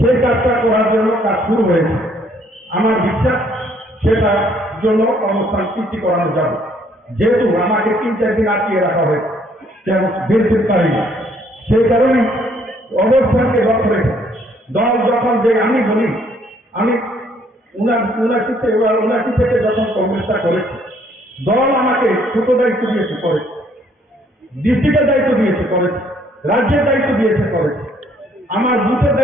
কাজটা করার জন্য কাজ শুরু হয়েছে। আমার বিশ্বাস সেটার জন্য অনুষ্ঠান সৃষ্টি করানো যাবে। যেহেতু আমাকে ৩-৪ দিন আটকিয়ে রাখা হয়েছে, কেমন বেরোতে পারি না, সেই কারণে অবস্থানকে লক্ষ্য রেখে দল যখন যে আমি বলি, আমি ৭৯ থেকে যখন কংগ্রেসটা করেছি, দল আমাকে ছোট দায়িত্ব দিয়েছে করেছে, ডিস্ট্রিক্টের দায়িত্ব দিয়েছে করেছে, রাজ্যের দায়িত্ব দিয়েছে করেছে, আমার বুথের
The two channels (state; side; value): normal; both; correlation 0.65